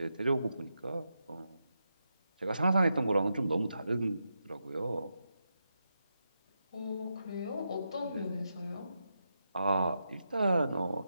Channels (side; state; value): both; inverted; correlation -0.86